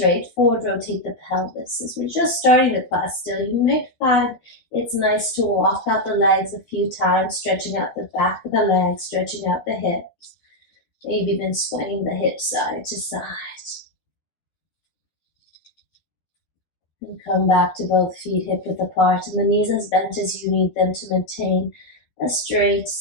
forward rotate the pelvis. As we're just starting the class still, you may find it's nice to walk out the legs a few times, stretching out the back of the legs, stretching out the hips. Maybe even swaying the hips side to side. And come back to both feet hip width apart and the knees as bent as you need them to maintain a straight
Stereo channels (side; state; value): right; late; 12 ms